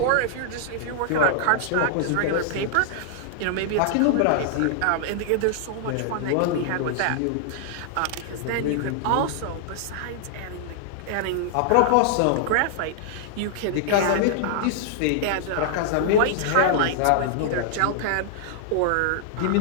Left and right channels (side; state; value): both; different; correlation -0.01